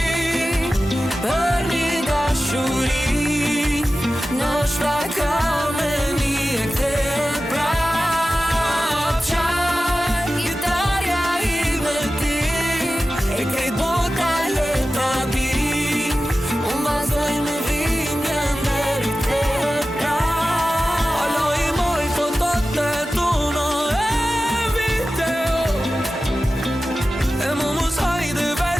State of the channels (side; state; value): both; normal; correlation 0.94